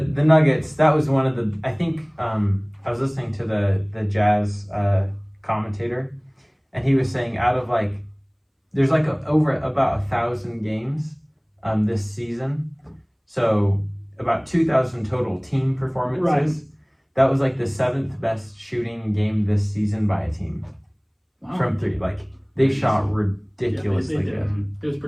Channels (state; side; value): identical; both; correlation 1.00